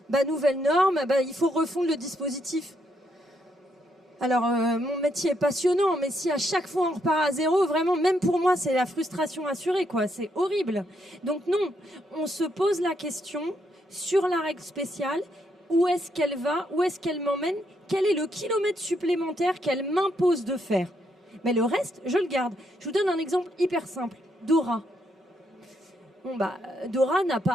nouvelle norme, il faut refondre le dispositif. Alors, mon métier est passionnant, mais si à chaque fois on repart à zéro, vraiment, même pour moi, c'est la frustration assurée, quoi. C'est horrible. Donc non, on se pose la question sur la règle spéciale où est-ce qu'elle va, où est-ce qu'elle m'emmène, quel est le kilomètre supplémentaire qu'elle m'impose de faire. Mais le reste, je le garde. Je vous donne un exemple hyper simple. Dora. Dora n'a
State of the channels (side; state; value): both; normal; correlation 0.77